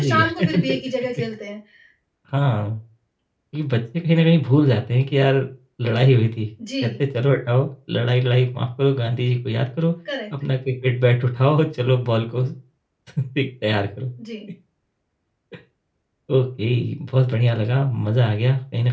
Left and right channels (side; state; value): both; identical; correlation 1.00